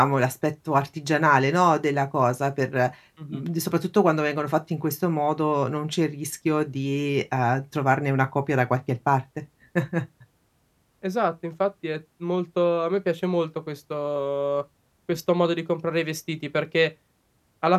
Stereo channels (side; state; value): both; identical; correlation 1.00